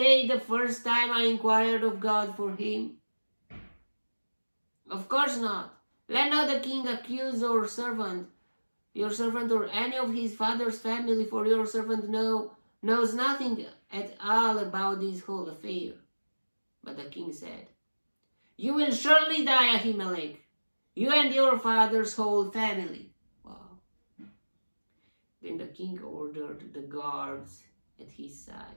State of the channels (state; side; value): inverted; both; correlation -1.00